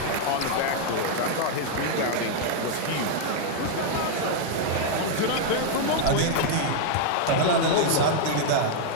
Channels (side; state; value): both; different; correlation 0.00